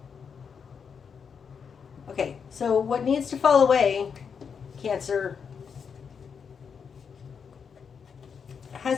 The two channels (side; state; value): right; quieter; 6.4 dB